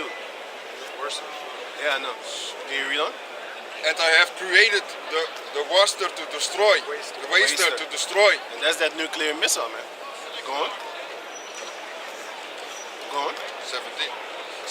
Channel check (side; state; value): both; identical; correlation 1.00